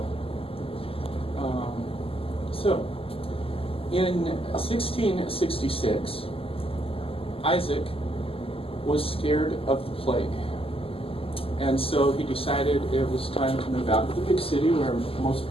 So, in 1666, Isaac was scared of the plague. And so he decided it was time to move out of the big city where most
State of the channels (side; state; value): right; late; 0.27 ms